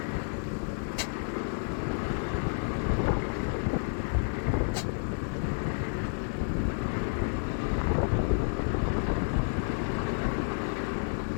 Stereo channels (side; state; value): right; silent; 57 dB below the other